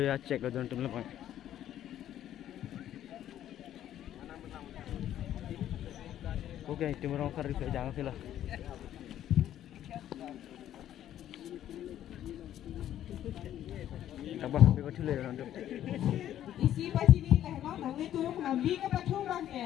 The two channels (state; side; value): quieter; right; 11.6 dB